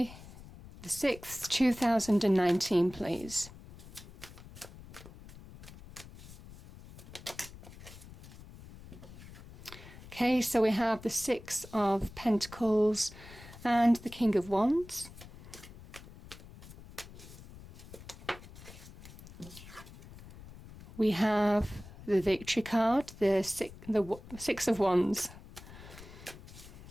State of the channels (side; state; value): left; noise; rumble, 17 dB below the sound